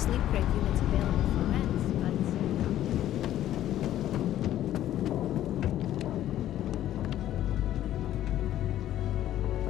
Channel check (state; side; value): quieter; right; 12.5 dB